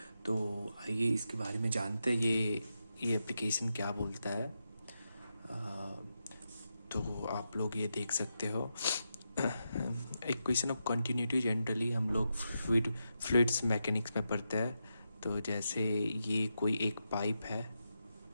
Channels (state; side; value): inverted; both; correlation -0.86